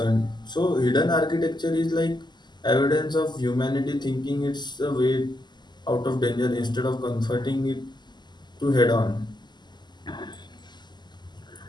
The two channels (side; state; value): right; late; 0.21 ms